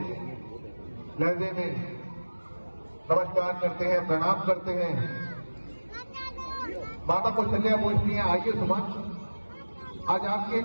लहजे में नमस्कार करते हैं, प्रणाम करते हैं। माता कौशल्या पूछती हैं, आइए सुमन, आज आपके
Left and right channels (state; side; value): inverted; both; correlation -1.00